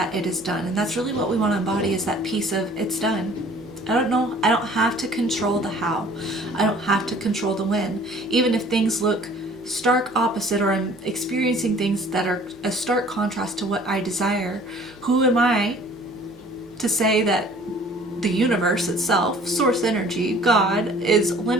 it is done. And that's really what we want to embody, is that piece of it's done. I don't have to control the how. I don't have to control the when. Even if things look stark opposite, or I'm experiencing things that are a stark contrast to what I desire, who am I to say that the universe itself, source energy, God, is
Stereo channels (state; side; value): noise; left; hum, 28 dB below the sound